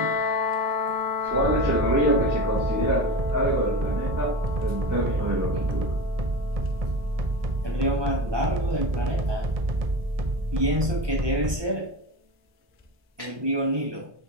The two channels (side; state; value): left; late; 1.2 ms